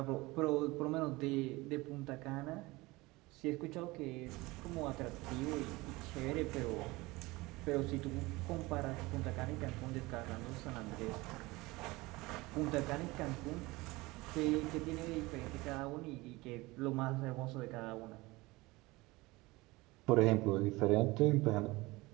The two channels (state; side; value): quieter; left; 21.8 dB